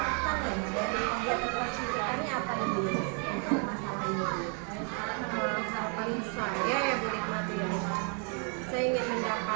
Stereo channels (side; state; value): left; quieter; 38.8 dB